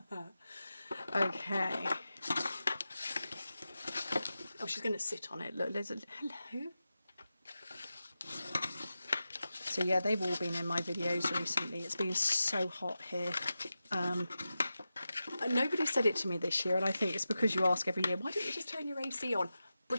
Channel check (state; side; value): inverted; both; correlation -0.92